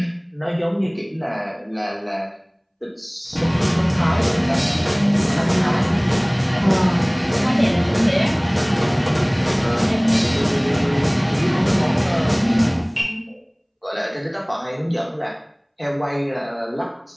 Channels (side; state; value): both; identical; correlation 1.00